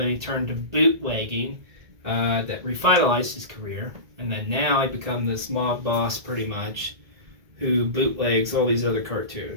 he turned to bootlegging. That revitalized his career, and then now he become this mob boss, pretty much, who bootlegs all these other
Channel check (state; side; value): late; left; 1.8 ms